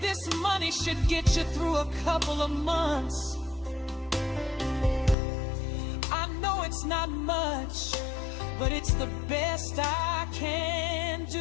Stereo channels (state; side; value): drops out; right; at 5.2 s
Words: this money should get you through a couple of months. I know it's not much, but it's the best I can